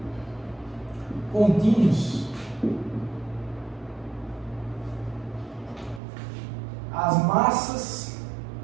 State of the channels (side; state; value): left; drops out; at 6.0 s